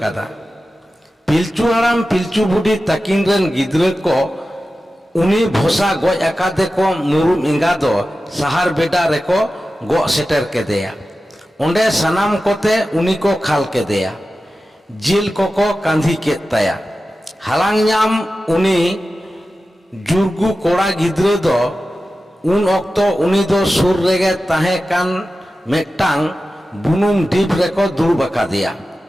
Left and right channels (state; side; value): normal; both; correlation 0.94